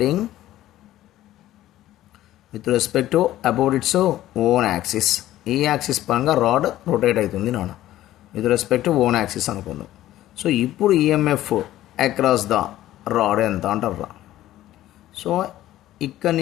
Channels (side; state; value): right; quieter; 14.2 dB